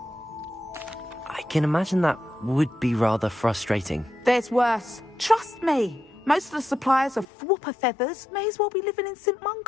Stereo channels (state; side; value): drops out; right; at 7.2 s